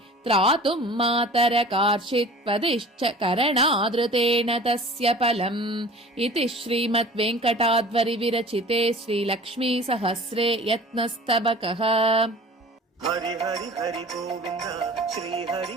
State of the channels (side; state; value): both; normal; correlation 0.43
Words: त्रातुं मातरकार्षीत्वदिश्च करणादृतेन तस्य फलम् इति श्रीमद्वेङ्कटाद्वरि विरचिते श्रीलक्ष्मीसहस्रे यत्नस्तबकः। हरि हरि हरि गोविन्द श्री हरि